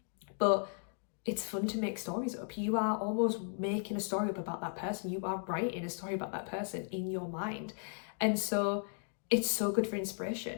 but it's fun to make stories up. You are almost making a story up about that person. You are writing a story about that person in your mind. And so it's so good for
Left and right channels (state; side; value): silent; right; 54 dB below the other